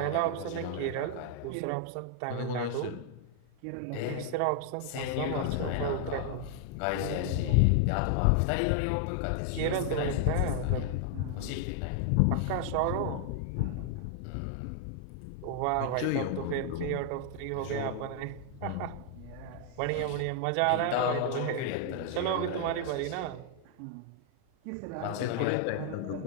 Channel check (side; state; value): both; different; correlation 0.00